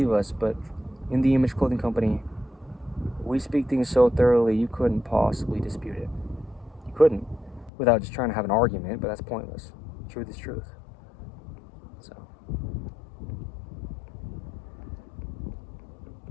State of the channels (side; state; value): right; drops out; at 7.7 s